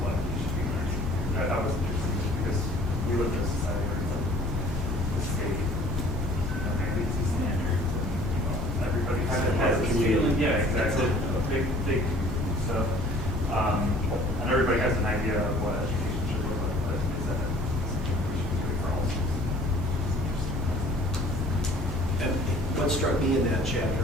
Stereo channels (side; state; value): both; normal; correlation 0.52